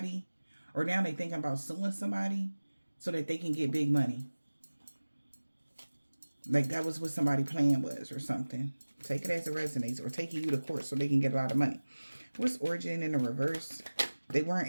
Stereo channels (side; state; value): both; inverted; correlation -1.00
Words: or now they thinking about suing somebody so that they can get big money. Like that was what somebody's plan was or something. Take it as it resonates, or taking you to court so they can get a lot of money. What's origin in the reverse? They weren't